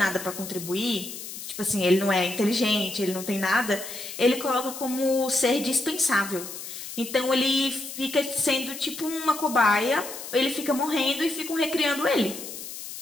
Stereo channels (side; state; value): left; noise; hiss, 10 dB below the sound